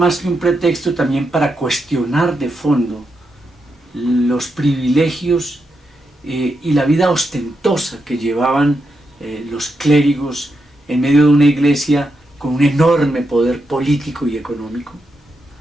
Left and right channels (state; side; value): normal; both; correlation 0.84